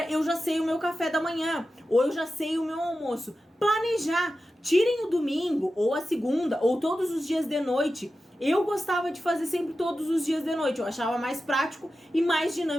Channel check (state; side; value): normal; both; correlation 0.92